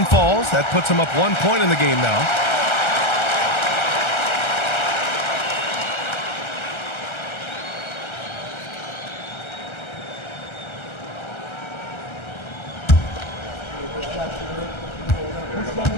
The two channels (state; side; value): late; right; 1.3 ms